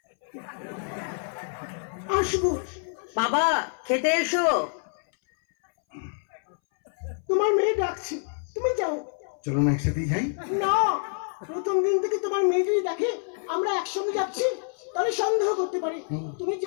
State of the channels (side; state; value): right; silent; 60 dB below the other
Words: আসবো। বাবা খেতে এসো। তোমার মেয়ে ডাকছে, তুমি যাও। চলো না একসাথেই যাই। না, প্রথম দিন থেকে তোমার মেয়ে যদি দেখে আমরা একসঙ্গে যাচ্ছি তাহলে সন্দেহ করতে পারে। তুমি